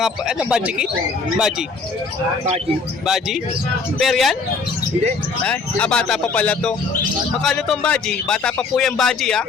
Baji kit? Baji? Baji? Pair yan? Hindi. Bata pa pala to. Makano tong Baji? Bata pa po yung Baji, ha?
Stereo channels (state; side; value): quieter; right; 4.5 dB